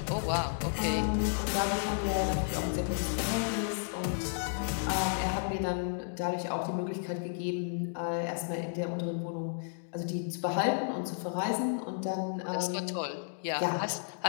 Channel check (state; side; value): silent; right; digital silence